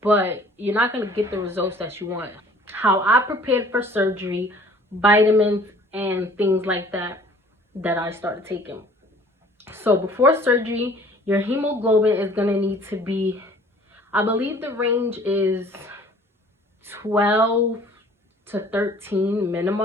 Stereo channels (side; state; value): both; normal; correlation 0.52